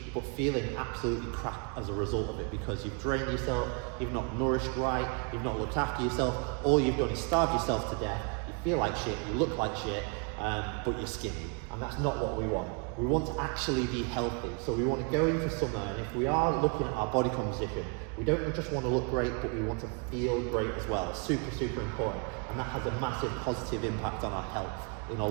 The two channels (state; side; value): quieter; left; 36.7 dB